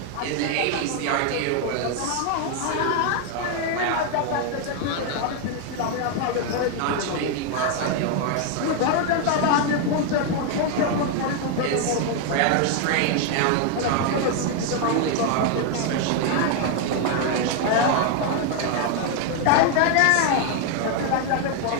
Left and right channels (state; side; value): different; both; correlation 0.01